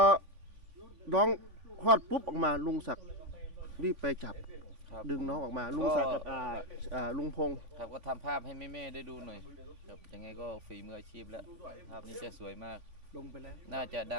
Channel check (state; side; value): late; left; 3.5 ms